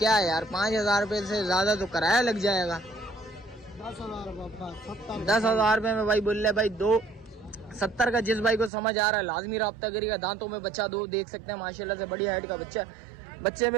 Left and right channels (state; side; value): drops out; left; at 8.7 s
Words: है यार, 5,000 रुपए से ज्यादा तो किराया लग जाएगा। 10,000 रुपए में भाई बोल रहे भाई। 270 का जिस भाई को समझ आ रहा है लाजमी राब्ता करेगा। दांतों में बच्चा 2 देख सकते हैं माशाल्लाह से, बड़ी हाइट का बच्चा। बच्चे